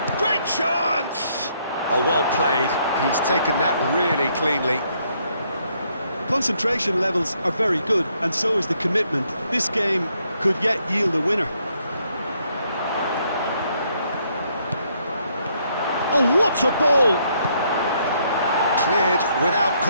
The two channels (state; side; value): inverted; both; correlation -0.71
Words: Great chance! Oh, well played. He's taken that really cleanly. Concentration levels are very good, and so is the commitment. This game could yet yield a winner. Oh, what a ball! Cleared without